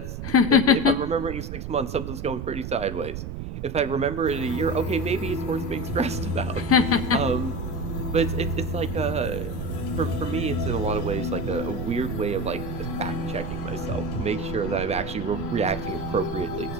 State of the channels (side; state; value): right; noise; rumble, 7 dB below the sound